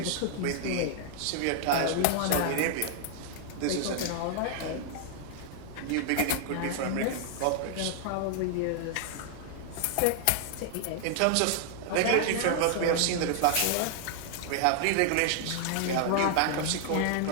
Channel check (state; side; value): different; both; correlation 0.00